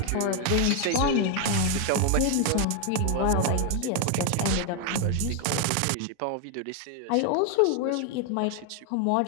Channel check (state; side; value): different; both; correlation 0.01